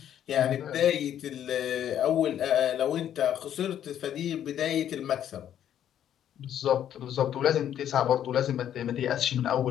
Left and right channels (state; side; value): quieter; right; 10.3 dB